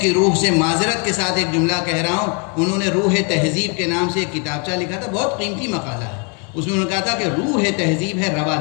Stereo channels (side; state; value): right; quieter; 36.3 dB